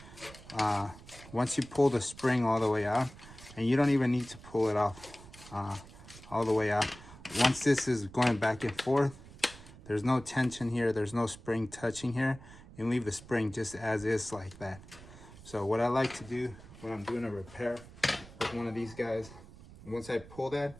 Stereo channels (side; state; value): right; noise; rumble, 19 dB below the sound